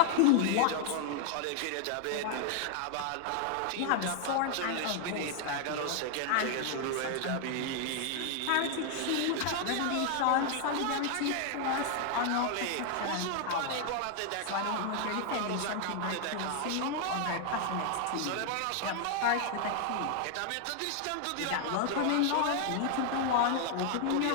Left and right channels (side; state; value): both; different; correlation 0.00